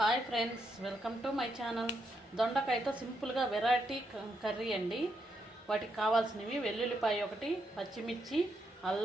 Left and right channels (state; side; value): normal; both; correlation 0.80